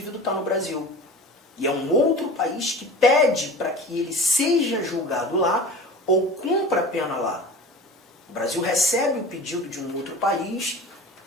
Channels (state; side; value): normal; both; correlation 0.36